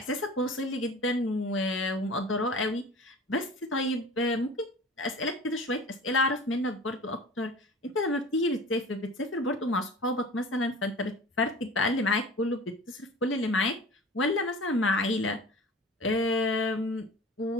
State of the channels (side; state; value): both; normal; correlation 0.40